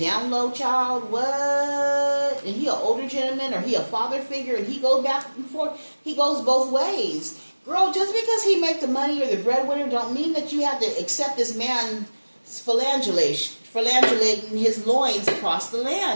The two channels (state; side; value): inverted; both; correlation -1.00